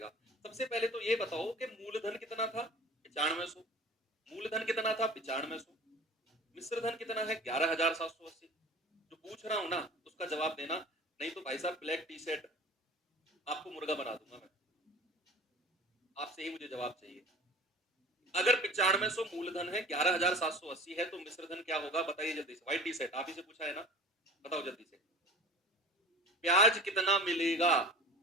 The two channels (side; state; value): both; normal; correlation 0.40